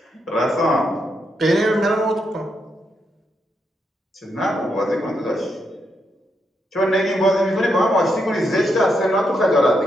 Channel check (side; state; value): both; normal; correlation 0.81